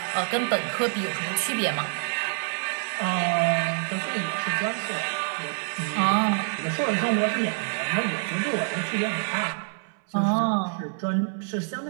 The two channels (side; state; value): left; silent; 61 dB below the other